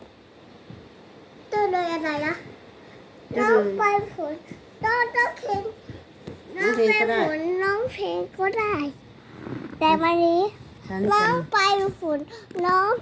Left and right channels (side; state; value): both; identical; correlation 1.00